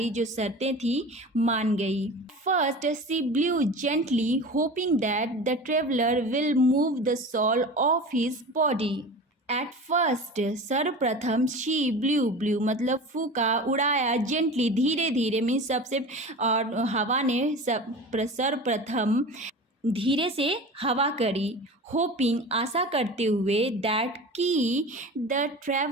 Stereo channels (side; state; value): both; normal; correlation 0.34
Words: जो शर्तें थी मान गई। First she blew gently hoping that the traveller will move the shawl off his body. At first सर्वप्रथम, शी ब्लू ब्लू मतलब फूका, उड़ाया, जेंटली धीरे धीरे मीन्स सबसे, और हवा ने सर्वप्रथम धीरे से हवा करी, होपिंग आशा करते हुए, दैट की द